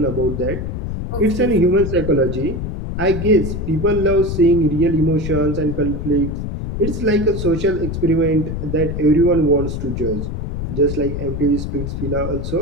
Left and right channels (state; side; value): noise; left; rumble, 4 dB below the sound